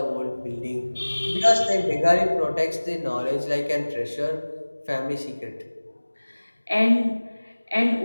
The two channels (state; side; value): inverted; both; correlation -1.00